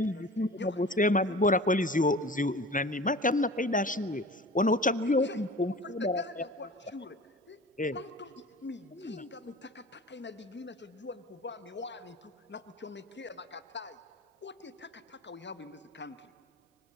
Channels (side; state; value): both; normal; correlation 0.39